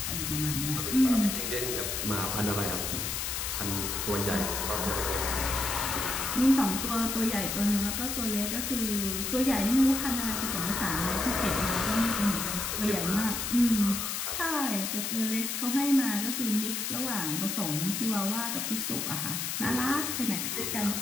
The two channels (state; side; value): noise; left; hiss, 2 dB below the sound